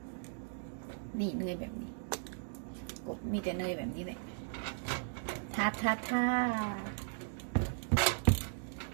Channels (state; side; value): silent; left; digital silence